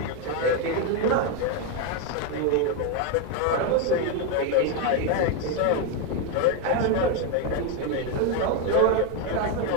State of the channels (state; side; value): different; both; correlation 0.02